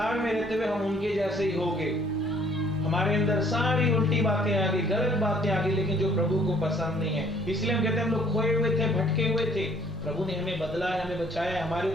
में रहते हुए हम उनके जैसे ही होंगे। हमारे अंदर सारी उल्टी बातें आ गई, गलत बातें आ गई, लेकिन जो प्रभु को पसंद नहीं है। इसलिए हम कहते हैं हम लोग खोए हुए थे, भटके हुए थे, प्रभु ने हमें बदला है, हमें बचाया, हमारे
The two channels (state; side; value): normal; both; correlation 0.59